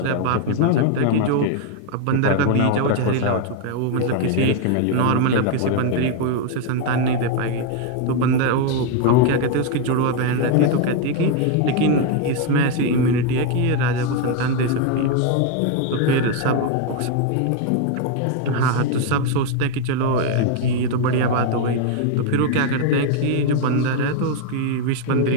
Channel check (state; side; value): different; both; correlation 0.01